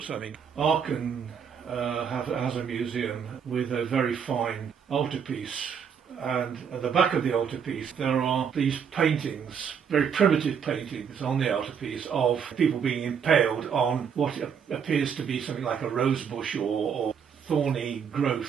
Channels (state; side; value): quieter; left; 7.2 dB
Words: something. Aachen has a museum with a very fine altarpiece, and at the back of the altarpiece there are these paintings, very primitive paintings on the altarpiece of people being impaled on what appears to be something like a rose bush or thorny